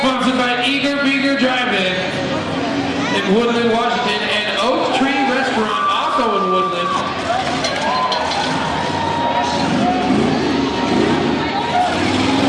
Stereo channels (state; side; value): identical; both; correlation 1.00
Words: Sponsored by Eager Beager Drive-In in Woodland, Washington, and Oak Tree Restaurant, also in Woodland.